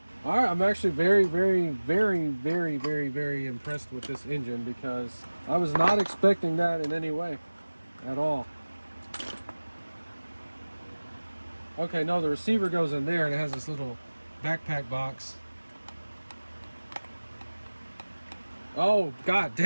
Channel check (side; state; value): both; inverted; correlation -1.00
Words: All right, I'm actually very, very, very, very, very, very impressed with this engine because I was not expecting that in any way at all. Okay, no, the receiver goes in there and it has this little backpack box. Oh, God